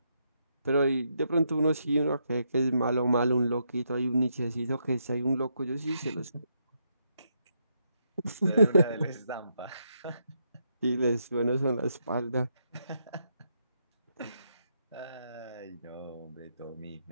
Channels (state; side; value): inverted; both; correlation -0.78